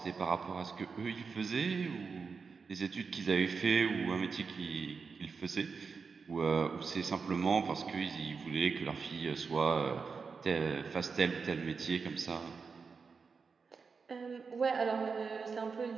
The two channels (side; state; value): left; quieter; 5.1 dB